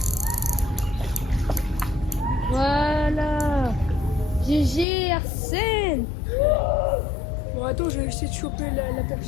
Voilà. GG Arsène. Bon, attends, je vais essayer de choper la perche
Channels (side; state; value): right; drops out; at 4.9 s